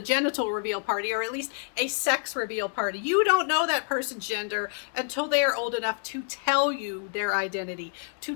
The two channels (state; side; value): silent; right; 59 dB below the other